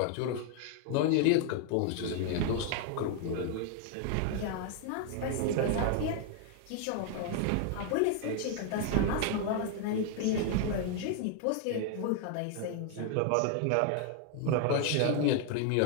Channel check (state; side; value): different; both; correlation 0.00